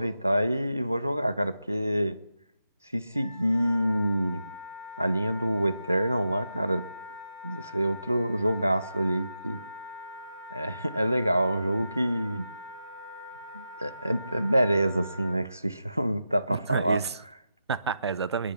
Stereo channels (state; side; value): inverted; both; correlation -0.88